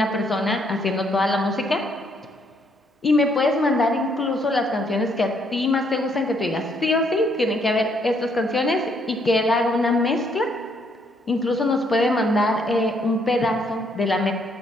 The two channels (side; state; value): both; normal; correlation 0.70